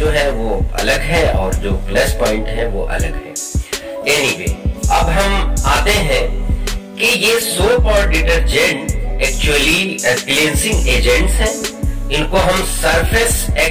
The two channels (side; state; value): both; identical; correlation 1.00